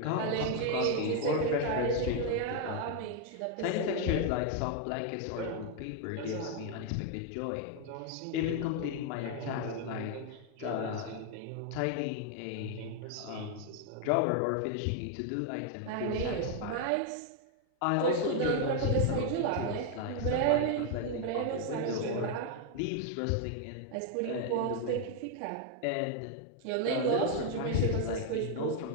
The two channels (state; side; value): different; both; correlation 0.00